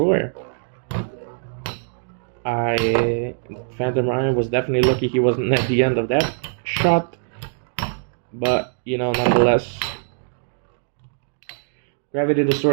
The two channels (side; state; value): left; silent; digital silence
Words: Phantom Orion was definitely lucky he wasn't at the end of that shot, but you know, nonetheless, Gravity